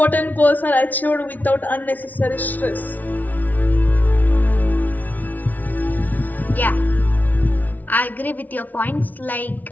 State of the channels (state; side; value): late; right; 0.079 ms